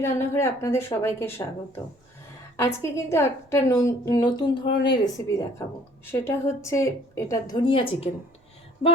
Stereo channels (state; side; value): normal; both; correlation 0.56